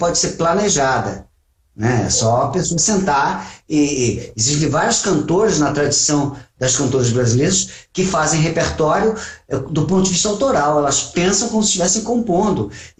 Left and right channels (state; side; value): identical; both; correlation 1.00